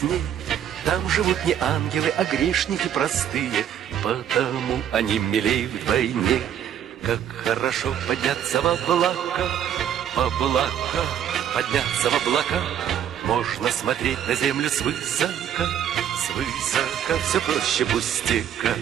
Там живут не ангелы, а грешники простые, потому они милей вдвойне. Как хорошо подняться в облака, подняться в облака. Можно смотреть на землю свысока, свысока, все проще пустяка.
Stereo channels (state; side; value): quieter; left; 9.7 dB